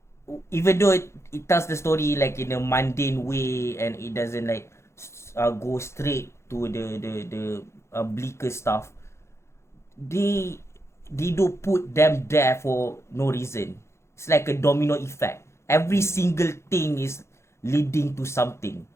even though it tells the story like in a mundane way, and it doesn't like go straight to the bleaker stuff, they do put them there for no reason. It's like a domino effect. Every single thing is leading to something.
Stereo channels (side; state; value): right; late; 0.13 ms